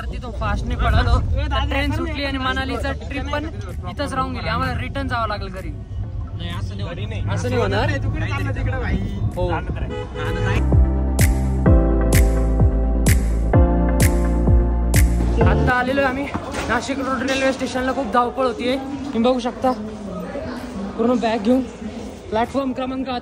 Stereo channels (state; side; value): identical; both; correlation 1.00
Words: तिथं फास्ट नाही पडालो तर ट्रेन सुटली आणि मनालीचा ट्रिप पण इथंच राहून गेली, आम्हाला रिटर्न जावं लागलं घरी। असं नाही होणार हो। आता आलेलो आम्ही नाशिक रोड रेल्वे स्टेशनला, खूप धावपळ होतीये, तुम्ही बघू शकता। पूर्ण बॅग घेऊन प्लॅटफॉर्म क्रमांक